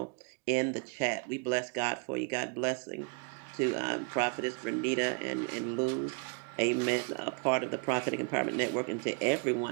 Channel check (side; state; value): left; quieter; 37.8 dB